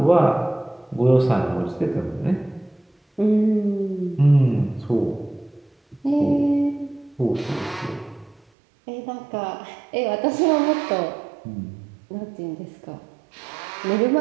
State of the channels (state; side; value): drops out; left; at 8.4 s